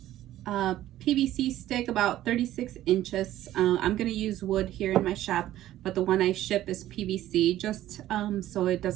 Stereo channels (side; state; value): left; quieter; 13.8 dB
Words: PVC stick about 36 inches. I'm going to use wood here in my shop, but the one I ship is PVC, just so it